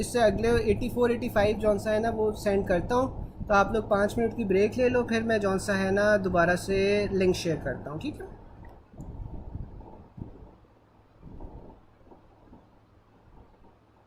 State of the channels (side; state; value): both; identical; correlation 1.00